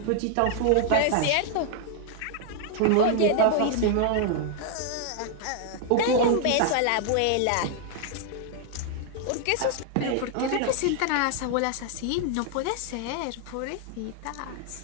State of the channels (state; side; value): different; both; correlation 0.00